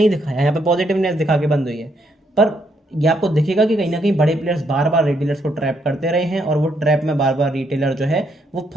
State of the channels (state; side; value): normal; both; correlation 0.75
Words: दिखाया, यहाँ पे पॉजिटिवनेस दिखा के बंद हुई है, पर ये आपको दिखेगा कि कहीं ना कहीं बड़े प्लेयर्स बार बार रिटेलर्स को ट्रैप करते रहे हैं, और वो ट्रैप में बार बार रिटेलर जो है वो